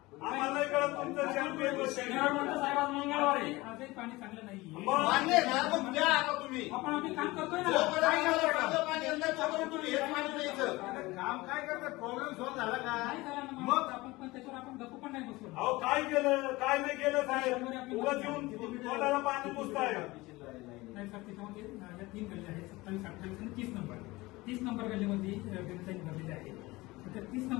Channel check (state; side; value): quieter; right; 21.0 dB